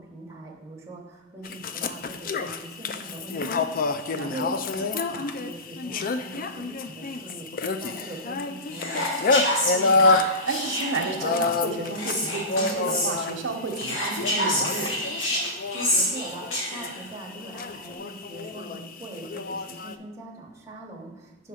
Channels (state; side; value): normal; both; correlation -0.19